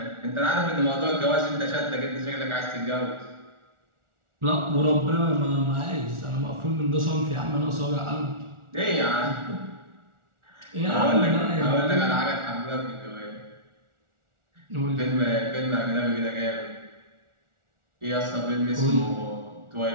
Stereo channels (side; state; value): left; late; 1.4 ms